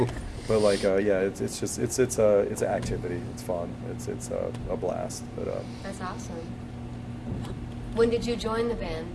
an activity. It's fun. It's a blast. But that's awesome. When did you join the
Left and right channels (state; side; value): identical; both; correlation 1.00